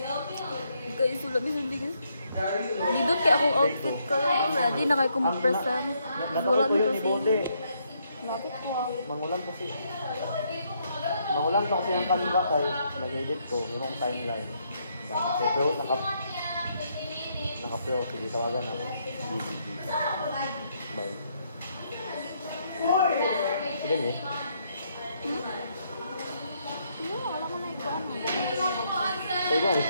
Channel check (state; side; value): inverted; both; correlation -0.74